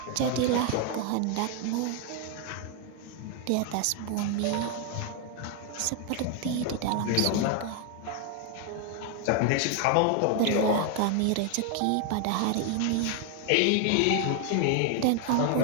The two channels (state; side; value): different; both; correlation 0.01